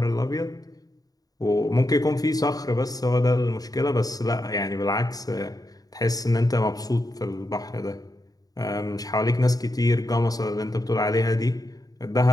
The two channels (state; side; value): late; right; 0.18 ms